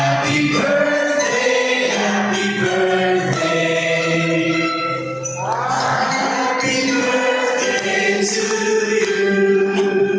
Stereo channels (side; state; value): both; identical; correlation 1.00